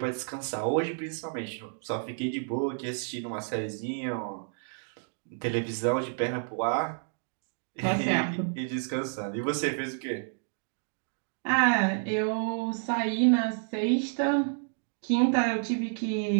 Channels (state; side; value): silent; left; digital silence